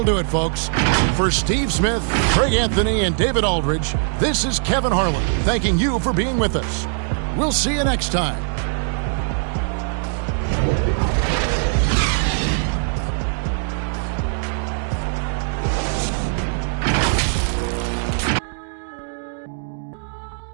do it, folks. For Steve Smith, Craig Anthony, and David Aldridge, this is Kevin Harlan thanking you for being with us. We'll see you next time.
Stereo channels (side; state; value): left; silent; digital silence